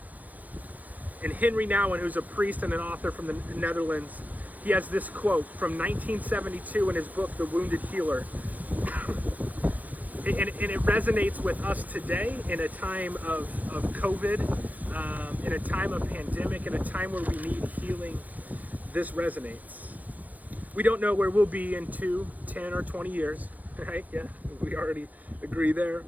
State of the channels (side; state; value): left; late; 0.078 ms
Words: And Henry Nouwen, who's a priest and an author from the Netherlands, he has this quote from 1972 in his book, The Wounded Healer. And it resonates with us today in a time of COVID, in a time of pandemic, in a time where we need healing. This resonates. We don't know where we'll be in 2, 10, or 20 years, right? Yeah, we already agree there.